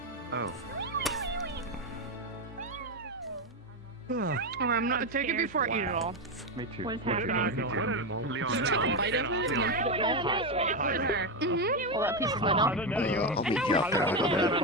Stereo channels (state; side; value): normal; both; correlation 0.10